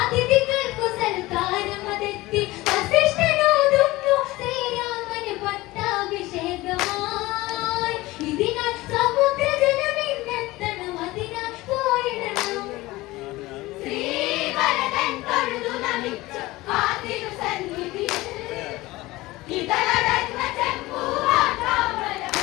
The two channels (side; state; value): right; quieter; 19.4 dB